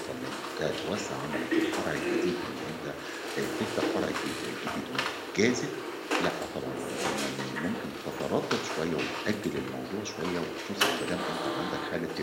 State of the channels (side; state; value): both; identical; correlation 1.00